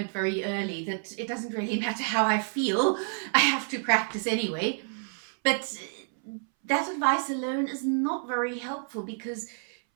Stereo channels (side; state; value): left; silent; 59 dB below the other